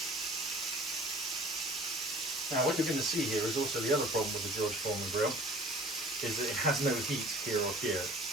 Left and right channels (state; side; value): normal; both; correlation 0.48